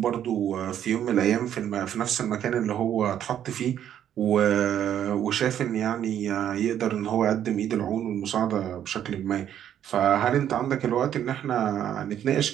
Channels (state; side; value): quieter; left; 10.2 dB